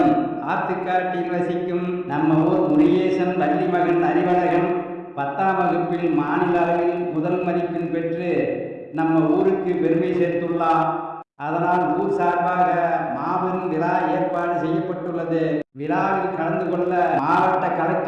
ஆத்துக்காட்டில் வசிக்கும் நம்ம ஊர் முருகேசன் வள்ளி மகன் அறிவழகன் 10ஆம் வகுப்பில் மாநில அளவில் முதல் மதிப்பெண் பெற்று நம்ம ஊருக்கு பெருமை சேர்த்துள்ளார். அதனால் ஊர் சார்பாக மாபெரும் விழா ஏற்பாடு செய்யப்பட்டுள்ளது. விழாவில் கலந்து கொள்ள மாவட்ட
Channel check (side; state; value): both; identical; correlation 1.00